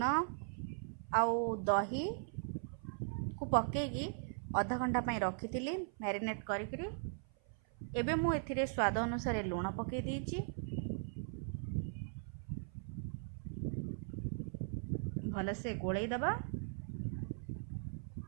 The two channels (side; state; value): left; silent; 52 dB below the other